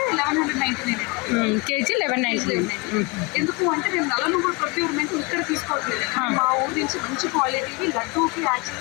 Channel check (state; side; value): quieter; right; 27.6 dB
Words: 1199 కేజీ 1199. ఎందుకు అంటే మేము నల్ల నువ్వులు ప్రొక్యూర్మెంట్ ఇక్కడ తీసుకోవట్లేదు. మా ఊరి నుంచి మంచి క్వాలిటీకి లడ్డూకి